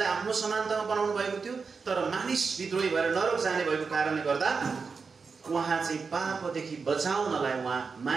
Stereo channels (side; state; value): left; quieter; 5.0 dB